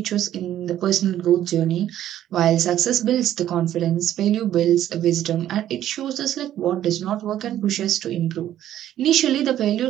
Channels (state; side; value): quieter; left; 11.9 dB